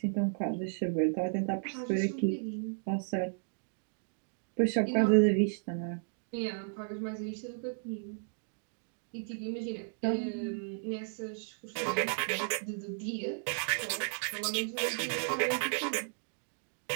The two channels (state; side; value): silent; left; digital silence